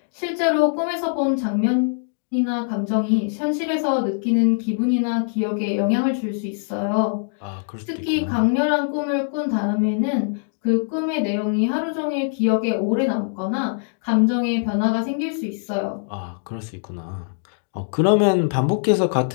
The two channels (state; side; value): silent; right; digital silence